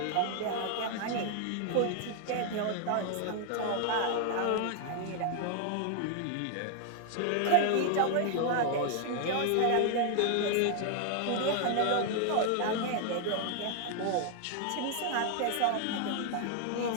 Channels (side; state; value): both; different; correlation 0.00